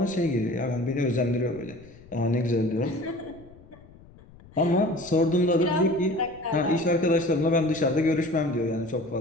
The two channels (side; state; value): left; noise; rumble, 23 dB below the sound